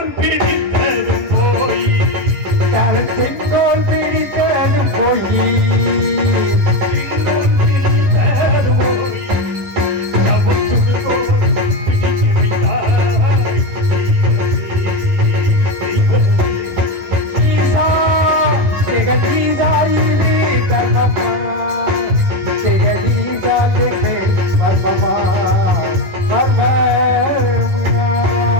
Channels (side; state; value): left; late; 11 ms